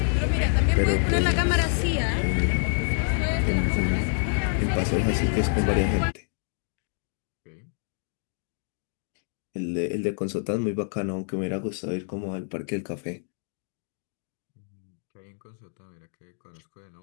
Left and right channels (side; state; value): right; silent; 60 dB below the other